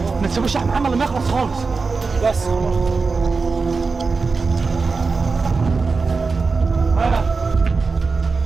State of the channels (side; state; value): left; quieter; 4.4 dB